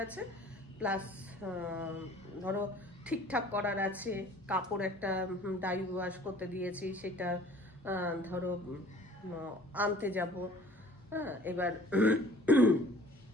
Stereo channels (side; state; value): both; normal; correlation 0.50